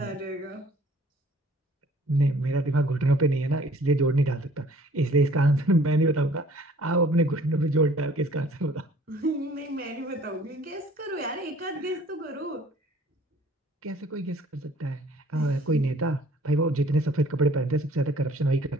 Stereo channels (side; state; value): both; normal; correlation 0.54